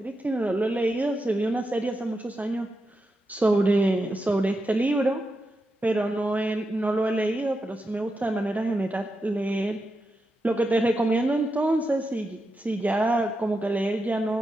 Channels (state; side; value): normal; both; correlation 0.87